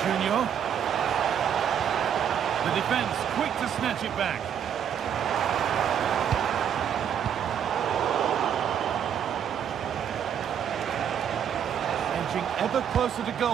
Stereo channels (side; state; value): left; quieter; 8.7 dB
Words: Junior. The defence quick to snatch it back. Edging ever closer to